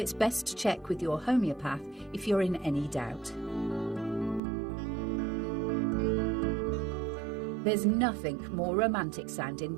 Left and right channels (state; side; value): drops out; left; at 4.4 s